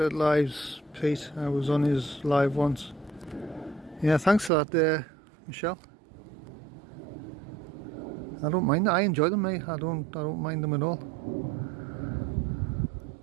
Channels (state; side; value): drops out; left; at 4.5 s